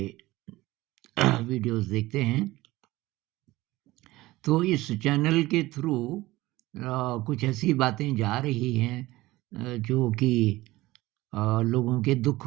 वीडियोज़ देखते हैं। तो इस चैनल के थ्रू कुछ ऐसी बातें जा रही हैं जो कि लोगों के दुःख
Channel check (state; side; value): quieter; left; 18.5 dB